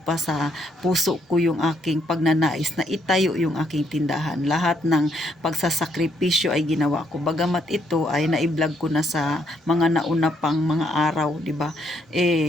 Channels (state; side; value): normal; both; correlation 0.73